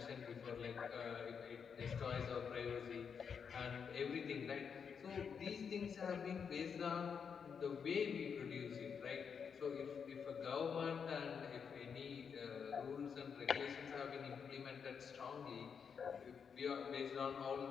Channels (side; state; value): right; quieter; 6.6 dB